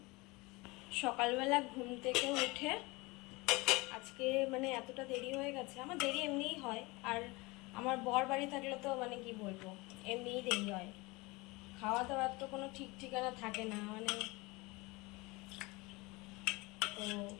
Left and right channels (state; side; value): quieter; right; 24.1 dB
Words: সকালবেলা ঘুম থেকে উঠে আজকে মানে এতটা দেরি হয়ে গেছে। আমার দেরি এমনিই হয়, আর আমার বর বাড়ি থাকলে তো মানে কি বলবো, এমনিই দেরি হয়। খাওয়া দাওয়ার তো কোনো ঠিক ঠিকানা থাকে না মানে। তো